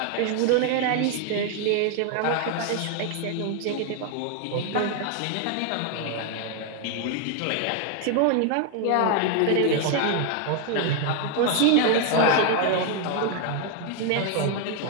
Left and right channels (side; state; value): both; different; correlation 0.00